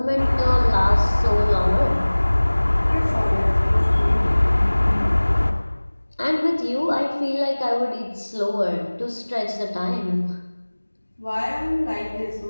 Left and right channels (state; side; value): inverted; both; correlation -1.00